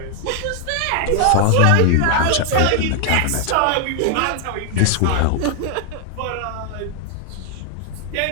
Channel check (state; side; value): different; both; correlation 0.00